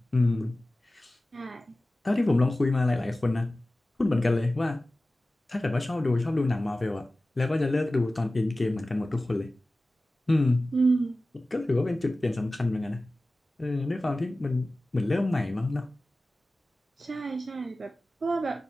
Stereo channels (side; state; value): both; normal; correlation 0.96